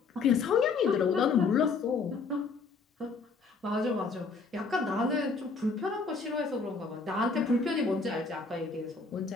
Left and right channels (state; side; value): quieter; right; 4.5 dB